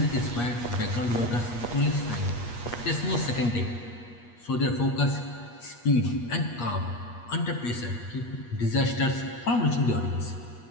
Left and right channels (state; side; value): late; right; 8.4 ms